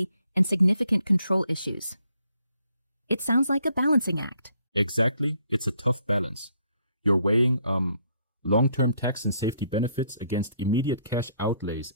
and significant control issues. It sounds like a balancing act. Exactly, it's a tough balance. You're weighing long-term tax and safety benefits against immediate cash outlays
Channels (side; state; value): both; inverted; correlation -0.69